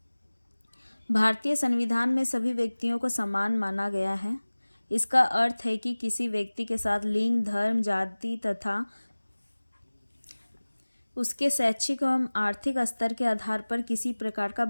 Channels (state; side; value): inverted; both; correlation -1.00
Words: भारतीय संविधान में सभी व्यक्तियों को समान माना गया है। इसका अर्थ है कि किसी व्यक्ति के साथ लिंग, धर्म, जाति तथा उसके शैक्षिक एवं आर्थिक स्तर के आधार पर किसी प्रकार का